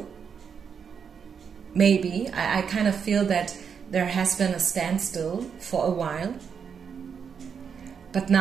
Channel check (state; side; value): quieter; left; 6.8 dB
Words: Maybe. I kind of feel that there has been a standstill for a while. But